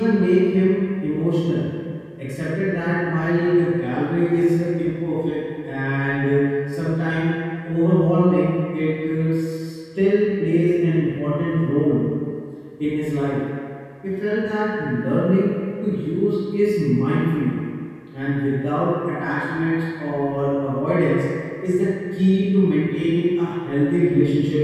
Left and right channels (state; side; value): identical; both; correlation 1.00